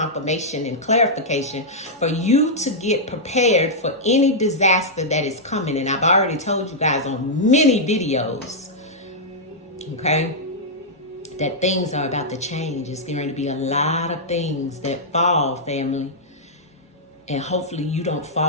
and clarification for you to get prepared for any disaster that is coming. And I've already told you guys on many videos, okay, that things are about to change. It's going to be a lot of things that fall, family. And hopefully you don't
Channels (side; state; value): both; normal; correlation -0.08